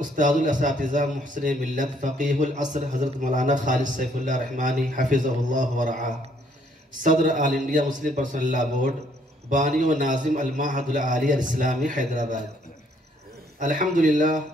الاساتذہ محسن ملت فقیہ العصر حضرت مولانا خالد سیف اللہ رحمانی حفظہ اللہ ورعاہ، صدر آل انڈیا مسلم پرسنل لا بورڈ، بانی و ناظم المعہد العالی الاسلامی حیدرآباد۔ الحمدللہ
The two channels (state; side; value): normal; both; correlation 0.67